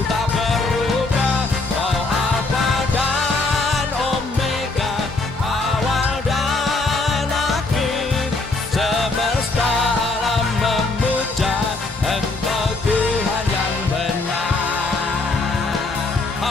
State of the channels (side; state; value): right; quieter; 3.4 dB